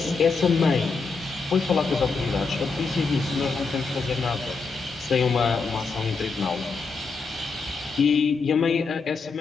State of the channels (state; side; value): quieter; right; 4.5 dB